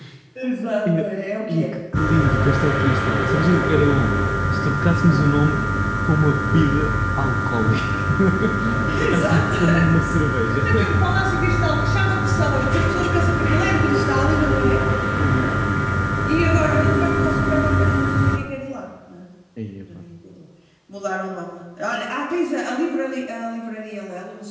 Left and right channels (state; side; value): identical; both; correlation 1.00